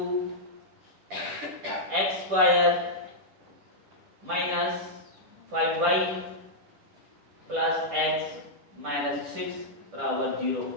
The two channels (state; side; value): late; left; 10 ms